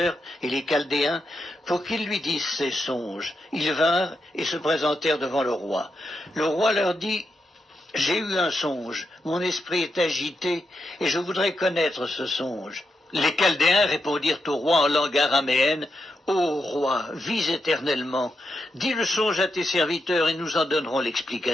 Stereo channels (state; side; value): normal; both; correlation 0.85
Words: et les chaldéens pour qu'ils lui disent ses songes. Ils vinrent et se présentèrent devant le roi. Le roi leur dit, « J'ai eu un songe, mon esprit est agité et je voudrais connaître ce songe. » Les chaldéens répondirent au roi en langue araméenne, « Ô roi, vis éternellement, dis le songe à tes serviteurs et nous en donnerons